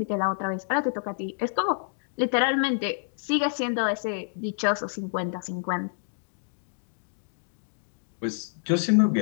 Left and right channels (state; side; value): silent; right; digital silence